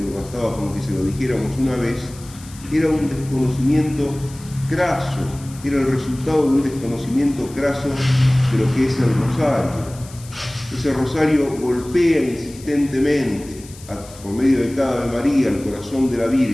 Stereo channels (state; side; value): noise; left; hiss, 20 dB below the sound